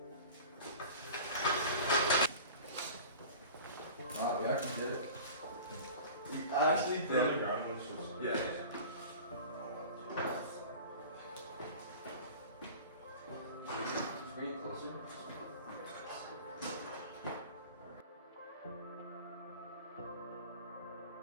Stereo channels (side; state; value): both; inverted; correlation -0.38